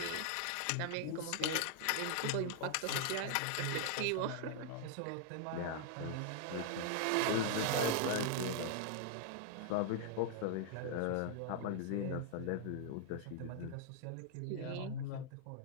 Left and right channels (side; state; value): both; different; correlation 0.00